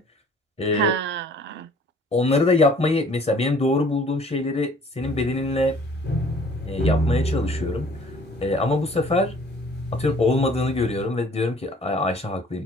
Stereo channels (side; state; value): both; normal; correlation 0.54